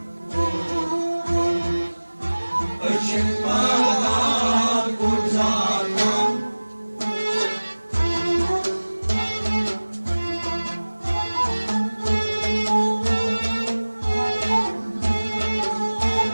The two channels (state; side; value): inverted; both; correlation -1.00